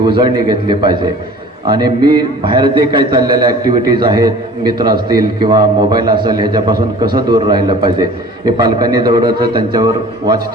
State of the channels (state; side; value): normal; both; correlation 0.45